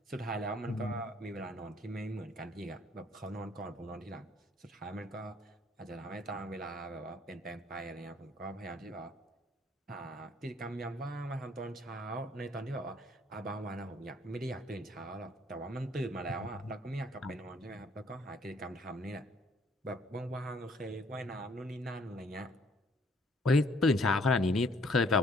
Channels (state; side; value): normal; both; correlation 0.62